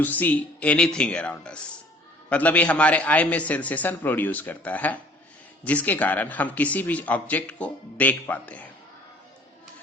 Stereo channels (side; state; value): both; normal; correlation 0.53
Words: see anything around us. मतलब ये हमारे आई में सेंसेशन प्रोड्यूस करता है जिसके कारण हम किसी भी ऑब्जेक्ट को देख पाते हैं।